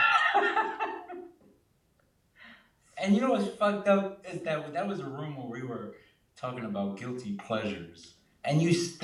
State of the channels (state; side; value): identical; both; correlation 1.00